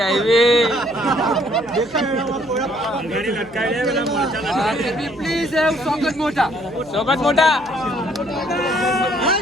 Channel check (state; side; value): noise; right; hum, 23 dB below the sound